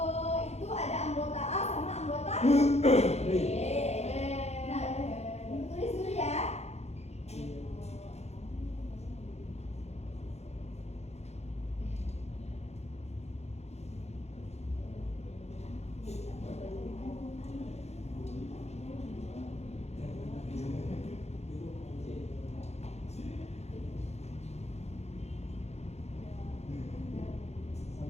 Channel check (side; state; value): right; late; 0.31 ms